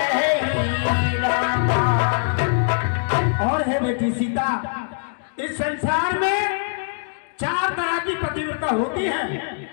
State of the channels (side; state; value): right; silent; digital silence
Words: रामा। और है बेटी सीता, इस संसार में 4 तरह की पतिव्रता होती है।